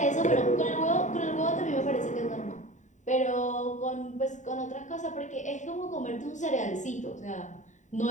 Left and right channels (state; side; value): late; right; 0.35 ms